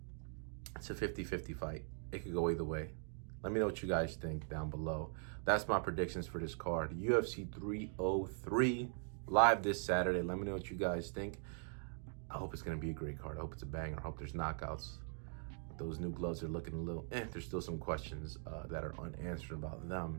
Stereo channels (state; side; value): silent; left; 50 dB below the other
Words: it's a 50-50 fight. It could go either way. Let me know what you guys think down below. That's my predictions for this card. UFC 303 live this Saturday. Let me know what you guys think. I hope it's going to be a great card. I hope it's a banger. I hope there's knockouts. Those new gloves are looking a little There's still some questions that are unanswered about